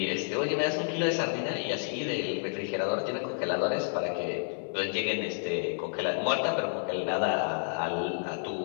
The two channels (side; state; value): right; silent; digital silence